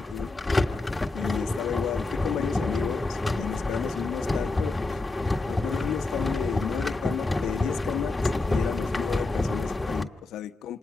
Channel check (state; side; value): quieter; right; 3.3 dB